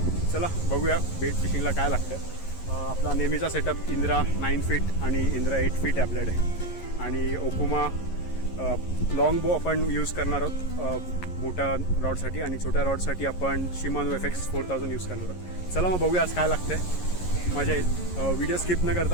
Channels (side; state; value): right; late; 11 ms